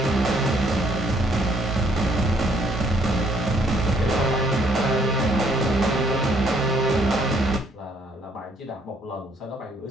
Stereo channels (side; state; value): both; normal; correlation 0.66